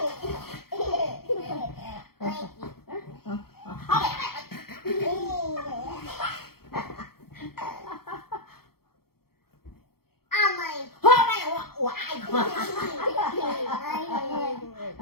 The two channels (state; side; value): late; right; 0.94 ms